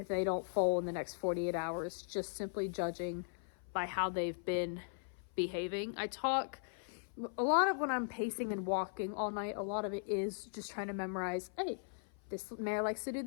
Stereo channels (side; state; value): right; silent; 52 dB below the other